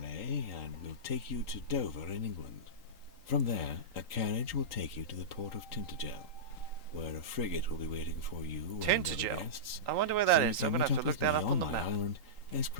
and will take you to Dover in England. From there, a carriage will take you to the port of Tintagel, where a frigate will be waiting for you and other Tintagel? guests. I wonder where that So is. you I'm can going to have meet to look with that me up on the my map. island as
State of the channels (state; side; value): late; right; 3.8 ms